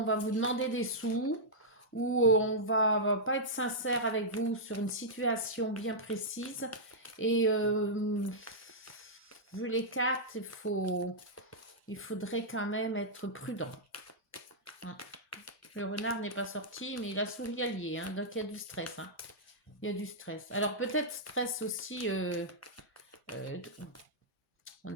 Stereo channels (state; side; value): normal; both; correlation -0.10